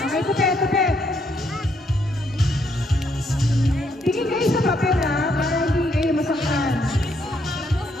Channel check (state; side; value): normal; both; correlation 0.73